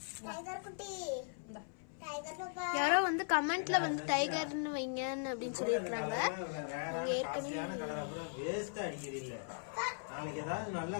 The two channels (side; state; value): right; silent; 52 dB below the other